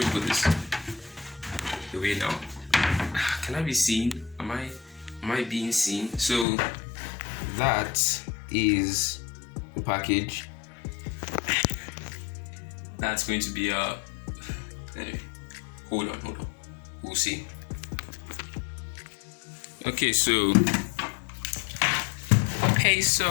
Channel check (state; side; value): drops out; right; at 6.5 s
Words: to put this away now. Can I be seen? Am I being seen? So that is the package. That's going to be anyway. Hold on. We'll see. Okay, so